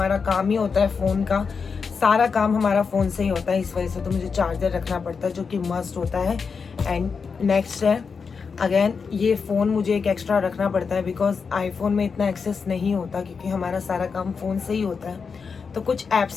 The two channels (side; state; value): right; quieter; 5.5 dB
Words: काम ही होता है फ़ोन का, सारा काम हमारा फ़ोन से ही होता है, इस वजह से तो मुझे चार्जर रखना पड़ता है जो कि मस्ट होता है। एंड नेक्स्ट है अगेन ये फ़ोन मुझे एक एक्स्ट्रा रखना पड़ता है बिकॉज आईफोन में इतना एक्सेस नहीं होता क्योंकि हमारा सारा काम फ़ोन से ही होता है। तो कुछ